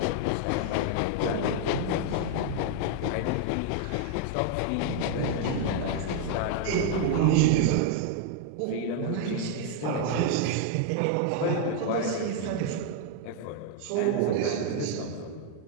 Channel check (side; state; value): both; different; correlation 0.00